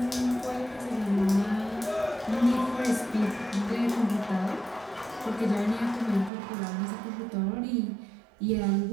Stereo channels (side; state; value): left; drops out; at 6.3 s